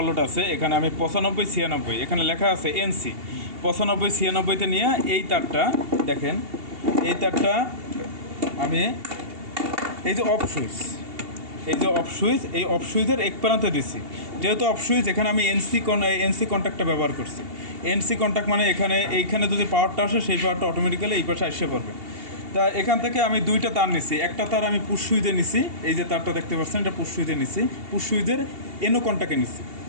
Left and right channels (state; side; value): late; left; 2.8 ms